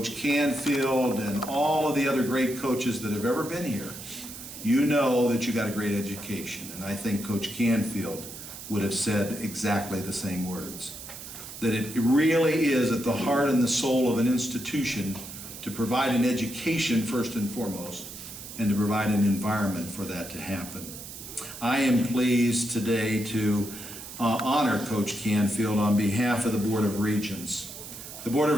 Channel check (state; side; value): noise; right; hiss, 12 dB below the sound